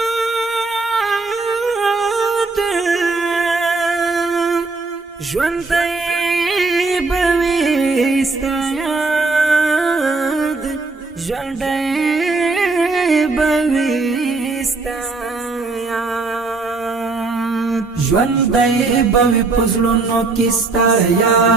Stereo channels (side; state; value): left; quieter; 3.8 dB